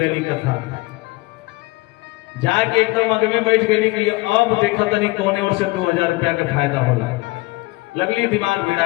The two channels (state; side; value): quieter; right; 22.1 dB